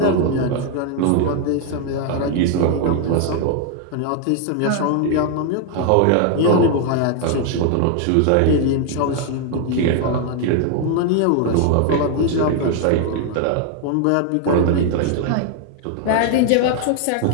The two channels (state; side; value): different; both; correlation 0.00